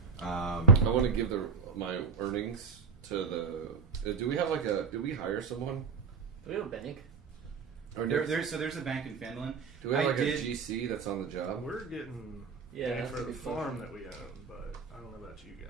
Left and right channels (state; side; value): quieter; left; 5.4 dB